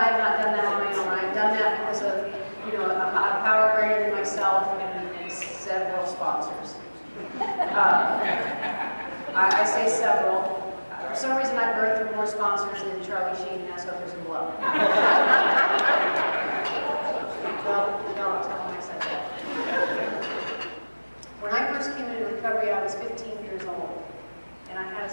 not done that on my own. I've done that because of, a power greater than myself and several sponsors. I say several. For some reason, I've birthed through more sponsors than Charlie Sheen has hookers and blow. No, tell them I said that. When I first came into recovery, I was 15 years old. And I had a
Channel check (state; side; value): inverted; both; correlation -1.00